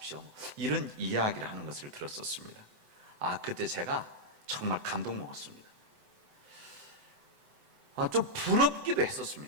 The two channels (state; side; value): late; left; 7.9 ms